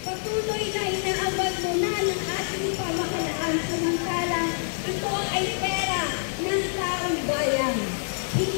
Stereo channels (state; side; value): silent; right; digital silence